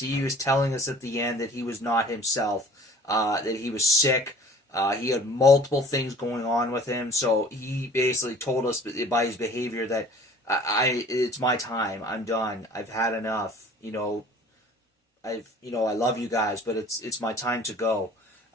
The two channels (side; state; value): both; normal; correlation 0.49